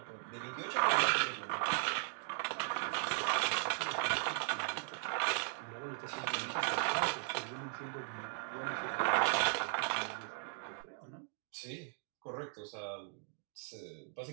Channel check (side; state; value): left; silent; 52 dB below the other